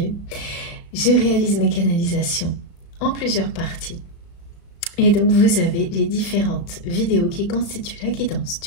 Je réalise mes canalisations en plusieurs parties. Et donc vous avez les différentes vidéos qui constituent la guidance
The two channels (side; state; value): right; late; 35 ms